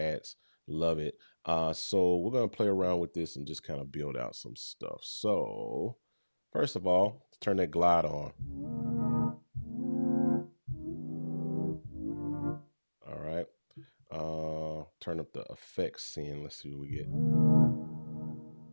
Love it. So we're going to play around with this and just kind of build out some stuff. So first of all, let's turn that glide on. All right. Turn up the effects scene. Let's see what we get.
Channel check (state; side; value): inverted; both; correlation -1.00